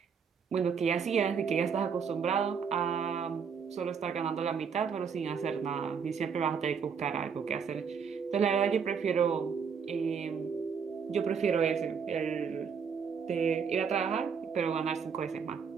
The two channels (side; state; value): left; quieter; 6.4 dB